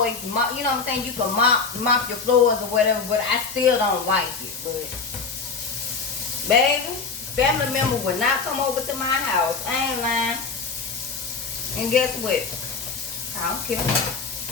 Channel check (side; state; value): right; quieter; 4.9 dB